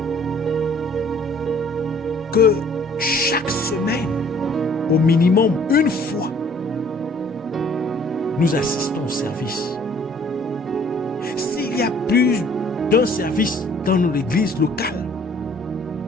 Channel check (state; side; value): normal; both; correlation 0.57